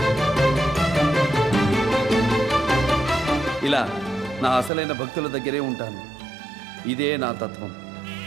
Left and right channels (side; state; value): left; drops out; at 4.7 s